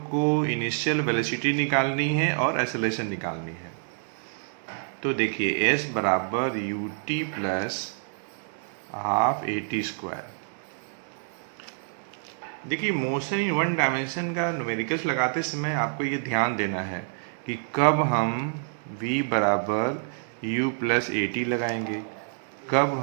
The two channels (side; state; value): left; silent; digital silence